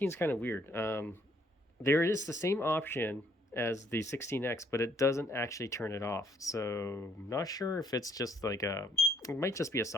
is kind of weird. There is the same option as the 16X, but it doesn't actually turn it off. So I'm not sure if it's just like it might just be a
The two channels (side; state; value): both; normal; correlation 0.66